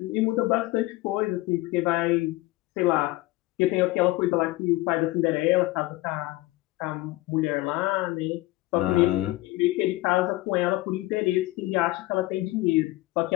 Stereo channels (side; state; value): right; quieter; 19.3 dB